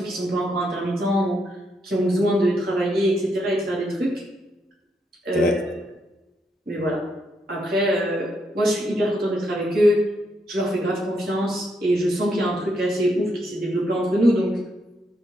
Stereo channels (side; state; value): both; normal; correlation 0.78